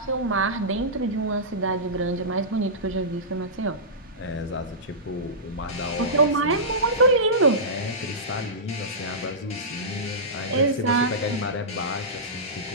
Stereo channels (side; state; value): both; normal; correlation -0.17